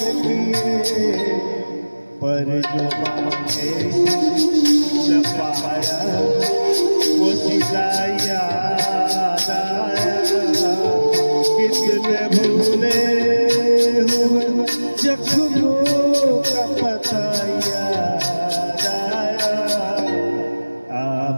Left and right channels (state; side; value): inverted; both; correlation -1.00